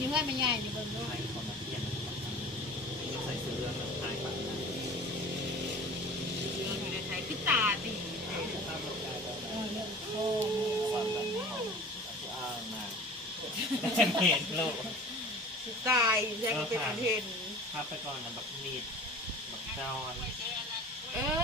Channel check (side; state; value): both; normal; correlation 0.41